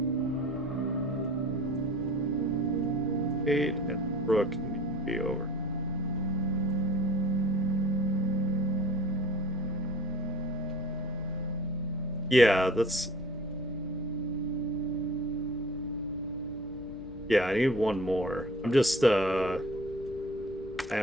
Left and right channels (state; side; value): normal; both; correlation 0.46